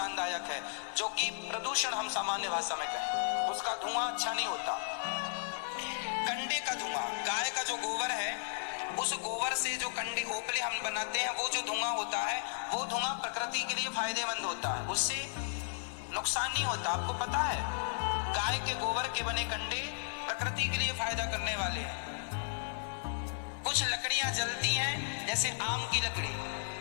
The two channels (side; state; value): right; silent; 55 dB below the other